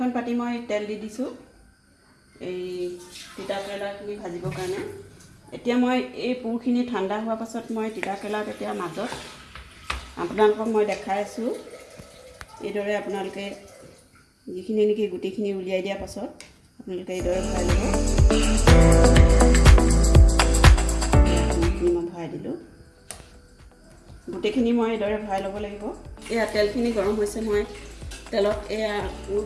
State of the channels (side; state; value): both; identical; correlation 1.00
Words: পাতি মই তেল দি দিছোঁ এই তিতাকেৰেলাখিনি ভাজিবৰ কাৰণে। এতিয়া মই এই পুৰখিনি ঠাণ্ডা হোৱাৰ পাছত মই তিতাকেৰেলাত এতিয়া মাজত আপোনালোকক মই দেখাই আছোঁ। এইদৰে আপোনালোকে যিখিনি নেকি গুটিখিনি উলিয়াই দিয়াৰ পাছত আপোনালোকে এইদৰে ভৰাই ল'ব। মই ভৰাই দিলোঁ, গোটেইখিনি মই এইদৰে ভৰাই ল'ব লাগিব। এয়া তেলখিনি গৰম হৈছে, মই তেলত এয়া পুৰ